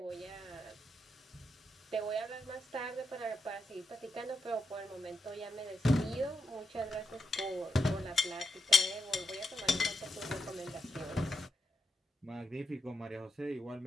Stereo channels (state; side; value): normal; both; correlation 0.84